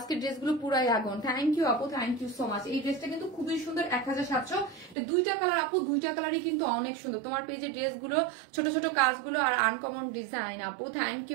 ড্রেসগুলো পুরাই আগুন। থ্যাংক ইউ আপু, থ্যাংক ইউ সো মাচ। এই ড্রেসটা কিন্তু খুবই সুন্দর, 1700। দুইটা কালার আপু, দুইটা কালারই কিন্তু অনেক সুন্দর। তোমার পেজে ড্রেসগুলো ছোট ছোট কাজগুলো আর আনকমন ডিজাইন আপু। থ্যাংক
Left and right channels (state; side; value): drops out; left; at 5.0 s